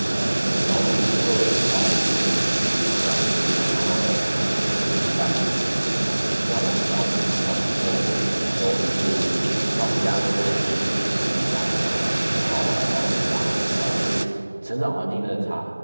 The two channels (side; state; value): both; inverted; correlation -1.00